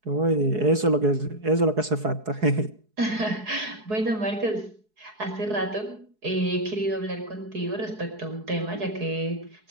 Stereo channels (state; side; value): late; left; 4.7 ms